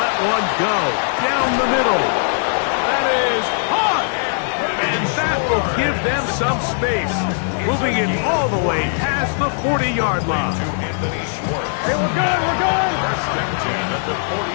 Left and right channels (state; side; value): silent; right; 66 dB below the other